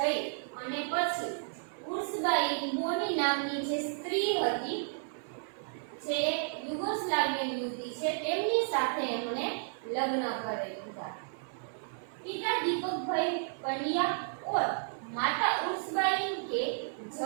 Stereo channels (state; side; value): silent; left; 56 dB below the other